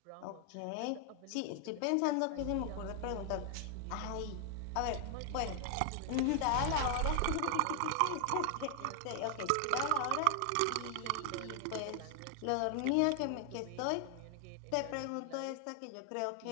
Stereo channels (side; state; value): both; different; correlation 0.00